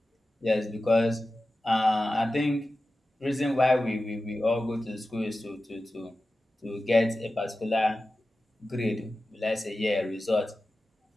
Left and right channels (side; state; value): both; normal; correlation 0.94